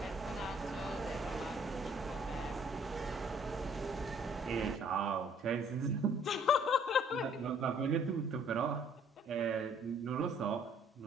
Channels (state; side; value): normal; both; correlation 0.60